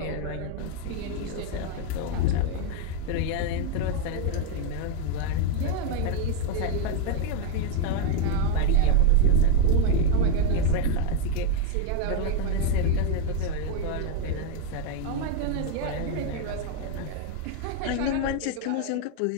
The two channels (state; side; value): different; both; correlation 0.01